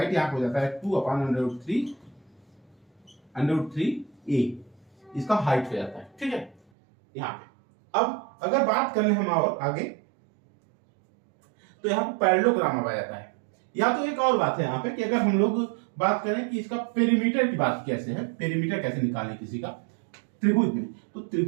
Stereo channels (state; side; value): drops out; left; at 6.6 s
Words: यहाँ हो जाता है 2/√3 इसका हाइट हो जाता है, ठीक है। यहाँ पे अब अगर बात कर ले हम और आगे, तो यहाँ पे पैरेललोग्राम आ जाता है। या तो एक और बात है यहाँ पे कि अगर हम लोग बात करें कि इसका पेरीमीटर की बात कैसे है, पेरीमीटर कैसे निकालें किसी का त्रिभुज में, तो